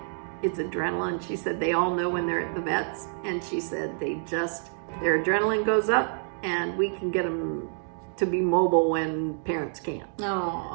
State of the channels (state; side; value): silent; left; digital silence